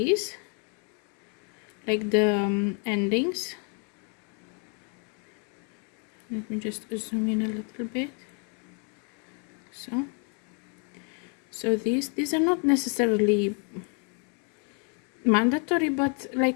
like the endings. Let me just zoom in a little bit. So these are not necessarily mandatory, but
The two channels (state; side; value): quieter; right; 38.7 dB